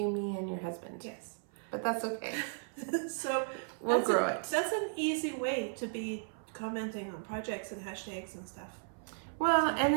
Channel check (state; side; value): silent; left; 54 dB below the other